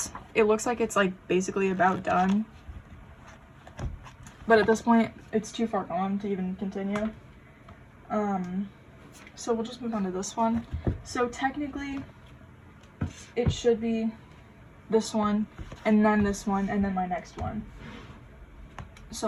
it looks like it's, like, basically about done. But at this point, it's too far gone to even continue. So we'll just move on to this one. So technically, it should be this one, and then this one, and then my next one.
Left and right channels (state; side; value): identical; both; correlation 1.00